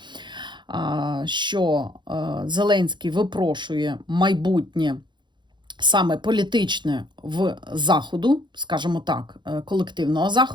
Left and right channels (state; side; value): late; left; 0.22 ms